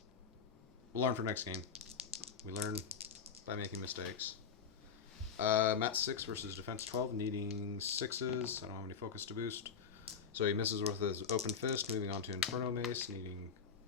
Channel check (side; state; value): right; quieter; 6.4 dB